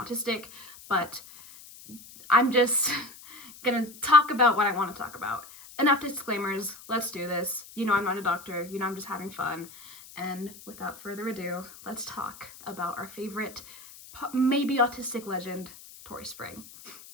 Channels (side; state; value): left; noise; hiss, 18 dB below the sound